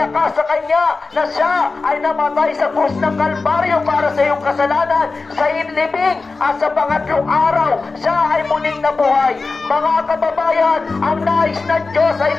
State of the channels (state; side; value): quieter; right; 3.9 dB